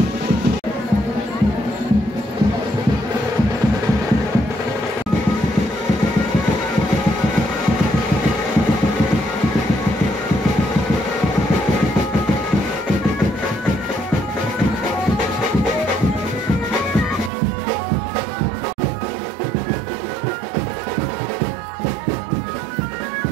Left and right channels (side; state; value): left; drops out; at 17.3 s